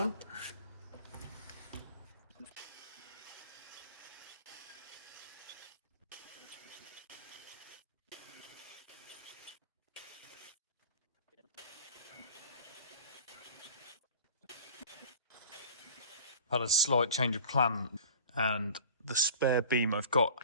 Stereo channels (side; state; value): both; inverted; correlation -0.43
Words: Had a slight change of plan, and the spare beam I've got